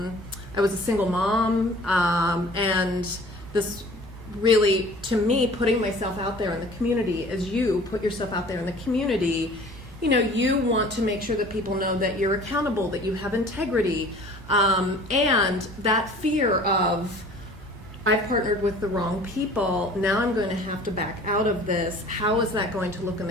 was a single mom, and this really, to me, putting myself out there in the community, as you put yourself out there in the community, you want to make sure that people know that you're accountable, that you have integrity, and that fear of, I've partnered with the wrong people, now I'm going to have to back out of this. How is that going to look in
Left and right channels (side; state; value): both; normal; correlation 0.47